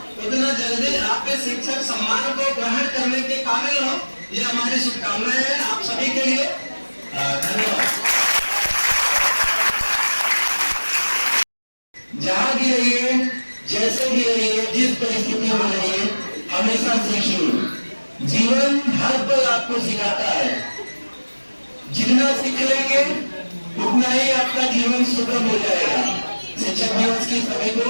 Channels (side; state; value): both; inverted; correlation -1.00